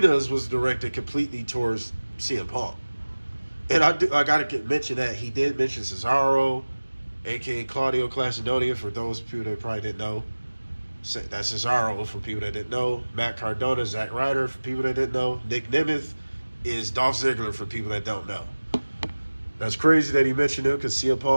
was directed completely towards CM Punk. And I got to mention that he did mention Cesaro, a.k.a. Claudio Castagnoli, for those people that probably didn't know. That's Cesaro for people that didn't know. Matt Cardona, Zack Ryder for people that didn't know. Nick Nemeth is Dolph Ziggler for people that don't know. That's crazy that he mentioned him because CM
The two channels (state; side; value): inverted; both; correlation -1.00